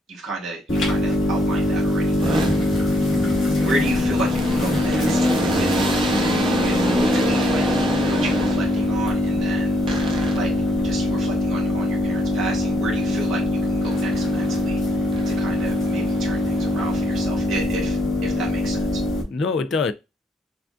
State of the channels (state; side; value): normal; both; correlation 0.72